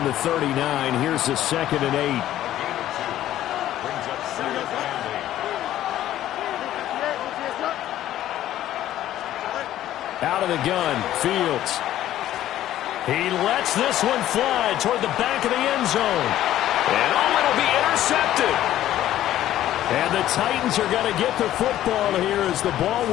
the 39. Here's the 2nd and 8. Out of the gun, Fields. He lets this one fly toward the back of the end zone. And it'll be intercepted. And the Titans are going to get the football here as the ball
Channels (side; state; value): right; quieter; 13.0 dB